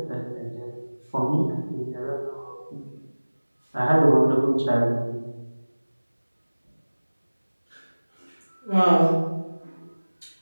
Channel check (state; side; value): inverted; both; correlation -1.00